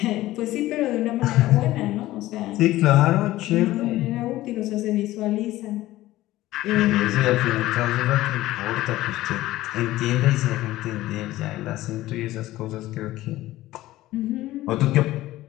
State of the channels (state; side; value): quieter; right; 16.2 dB